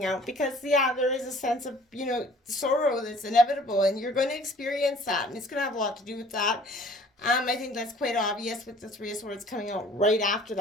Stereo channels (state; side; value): normal; both; correlation 0.53